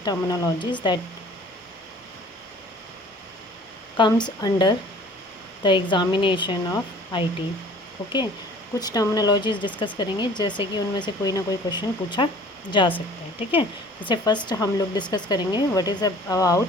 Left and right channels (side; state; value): both; normal; correlation 0.49